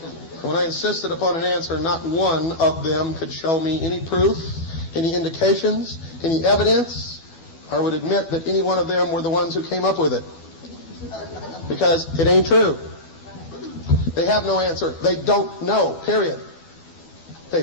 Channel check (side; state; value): right; late; 12 ms